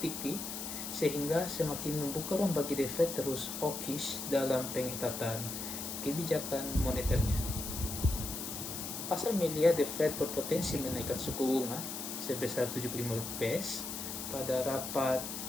sehingga semakin membuka ruang bagi The Fed terus hawkish dalam pengetatan kebijakan moneternya. Pasar melihat The Fed berpotensi menaikkan suku bunga sebesar 75 bps pada rapat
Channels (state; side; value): noise; left; hiss, 6 dB below the sound